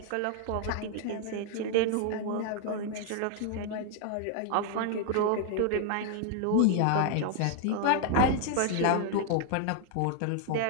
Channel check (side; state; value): both; different; correlation 0.00